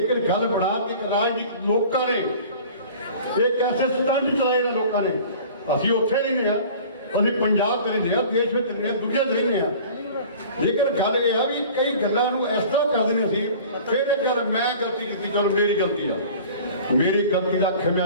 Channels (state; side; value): inverted; both; correlation -0.44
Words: ਗੱਲ ਬਣਾ ਕੇ ਰਾਜਨੀਤਿਕ ਲੋਕਾਂ ਨੇ ਇੱਕ ਐਸੇ ਸਟੰਟ ਚਲਾਏ ਨੇ ਲੋਕਾਂ ਨੇ। ਅਸੀਂ ਉੱਥੇ ਨਹੀਂ ਰਹੇ, ਅਸੀਂ ਪੰਜਾਬ ਚ ਰਹਿੰਦੇ ਹਾਂ, ਦੇਸ਼ ਵਿੱਚ ਰਹਿੰਦੇ ਹਾਂ, ਦੁਨੀਆ 'ਚ ਰਹਿੰਦੇ ਹਾਂ। ਲੇਕਿਨ ਗੱਲ ਇਹ ਆ ਵੀ ਕਈ ਗੱਲਾਂ ਨੂੰ ਇਸ ਤਰ੍ਹਾਂ ਕਰਦੇ ਨੇ ਸੀ, ਫਿਰ ਇਹ ਗੱਲ ਮੈਂ ਗਲਤੀ ਕੀਤੀ, ਚਲੋ ਮੇਰੀ ਗਲਤੀ ਆ, ਮੇਰੀ ਗਲਤੀ ਦਾ